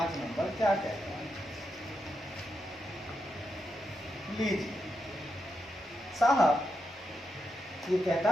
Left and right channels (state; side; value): normal; both; correlation 0.85